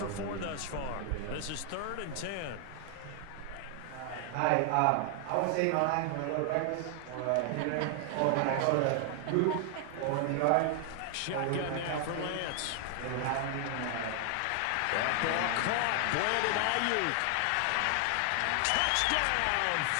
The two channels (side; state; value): both; different; correlation 0.00